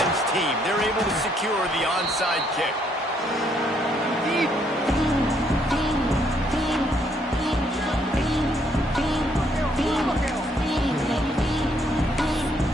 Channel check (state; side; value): normal; both; correlation 0.70